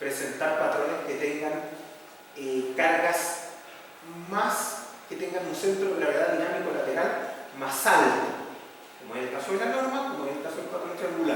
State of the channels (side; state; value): both; identical; correlation 1.00